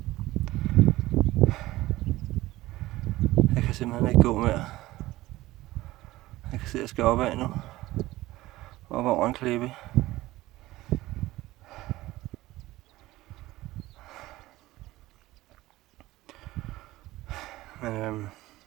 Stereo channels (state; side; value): quieter; left; 17.6 dB